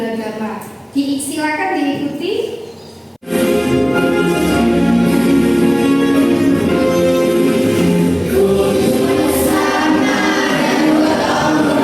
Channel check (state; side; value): identical; both; correlation 1.00